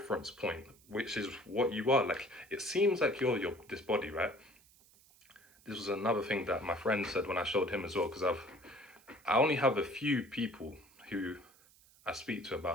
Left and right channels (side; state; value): right; noise; hiss, 27 dB below the sound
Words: point, which is what you are. Like, it seems like you're this body, right? This was another thing that my friend said when I showed him as well, because I only have a few people who I speak to